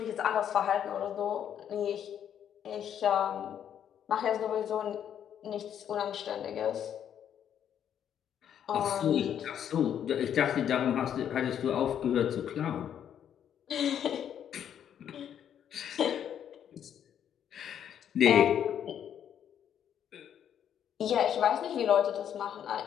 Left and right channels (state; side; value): quieter; right; 9.3 dB